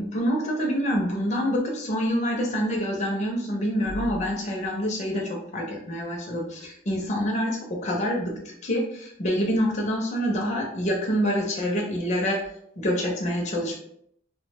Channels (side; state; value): both; normal; correlation 0.59